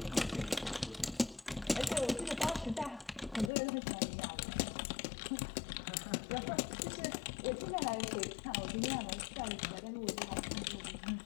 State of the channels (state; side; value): drops out; right; at 3.5 s